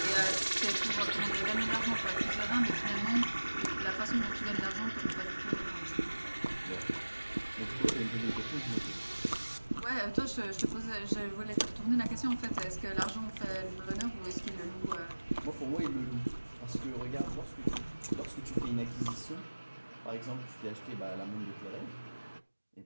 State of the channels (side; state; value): both; inverted; correlation -1.00